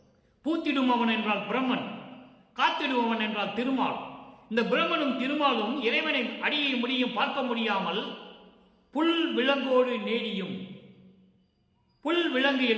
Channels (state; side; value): identical; both; correlation 1.00